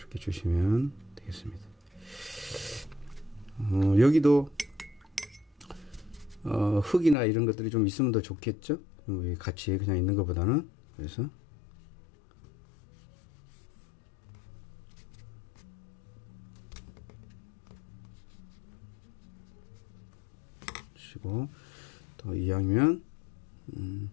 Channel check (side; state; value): right; drops out; at 7.2 s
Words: 주시면 되겠습니다. 여기도 흙이나 이런 것들이 좀 있으면 더 좋겠죠. 같이 그냥 있는 것보다는. 그래서 주시고, 또 이왕이면